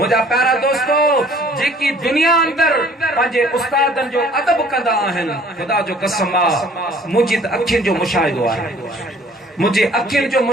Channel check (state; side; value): normal; both; correlation 0.55